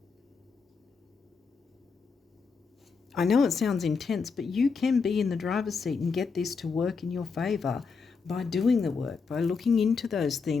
I know it sounds intense, but you can be in the driver's seat and get this to work in your favor by doing the work, by looking into those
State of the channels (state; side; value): quieter; right; 5.1 dB